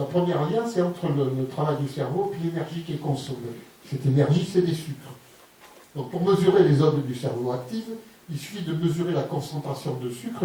première lien, c'est entre le travail du cerveau et l'énergie qui est consommée. Cette énergie, c'est des sucres. Donc, pour mesurer les zones du cerveau actives, il suffit de mesurer la concentration de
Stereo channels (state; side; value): identical; both; correlation 1.00